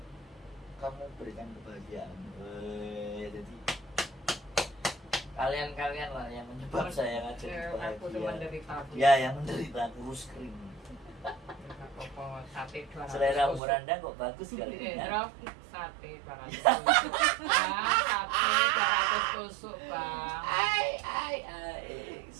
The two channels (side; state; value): left; drops out; at 13.6 s